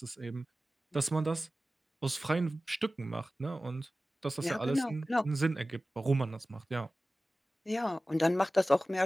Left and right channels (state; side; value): normal; both; correlation 0.96